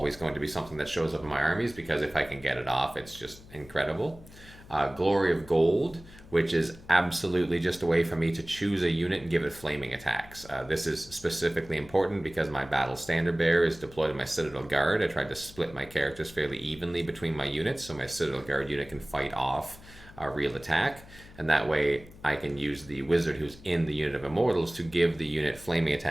going to be something that shows up in my armies, because if I can get it off, it's just incredible. Glory of Gold, which is absolutely just a way for me to choose a unit and give it flaming attacks. This is specifically important because my Battle Standard Bearer is deployed in my Citadel Guard. I tried to split my characters fairly evenly between my units, so my Citadel Guard unit can fight off a real attack, and that way I can use the wizard who's in the unit of Immortals to give the unit flaming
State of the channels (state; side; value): noise; left; hum, 20 dB below the sound